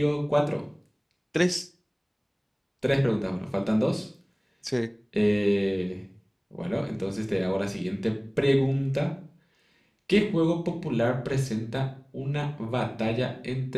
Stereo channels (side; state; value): both; identical; correlation 1.00